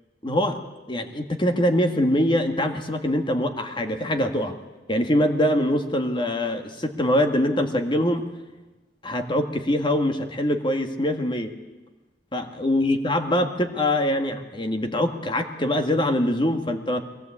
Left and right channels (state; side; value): normal; both; correlation 0.60